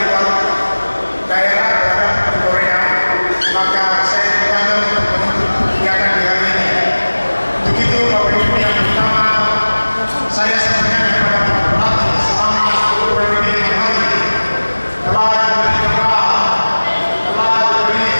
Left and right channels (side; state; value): both; inverted; correlation -1.00